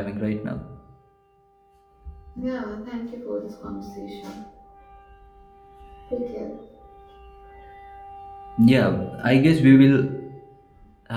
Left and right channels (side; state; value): both; identical; correlation 1.00